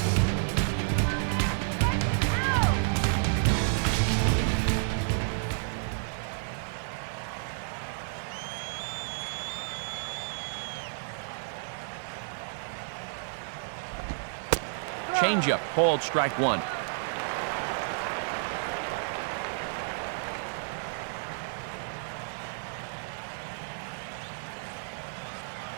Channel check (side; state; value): left; silent; digital silence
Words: Changeup, called strike 1.